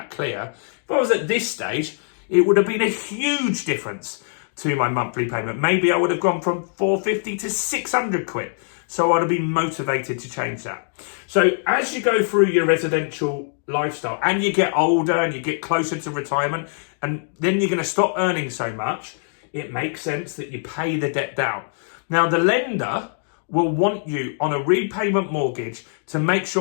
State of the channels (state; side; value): silent; right; digital silence